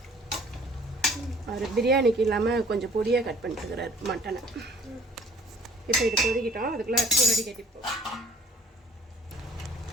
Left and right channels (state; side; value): normal; both; correlation 0.55